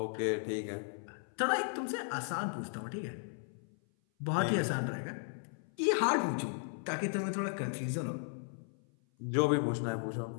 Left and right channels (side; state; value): right; silent; 54 dB below the other